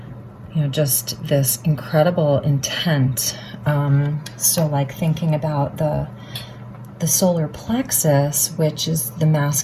you know, just this incredible intent. So like thinking about the solar plexus, which is the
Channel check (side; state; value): both; identical; correlation 1.00